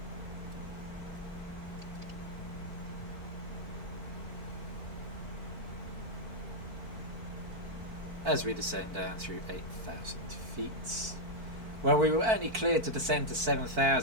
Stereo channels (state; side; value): late; left; 4.5 ms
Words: As we descend down through 8,000 feet. Well, we were only cleared to descend to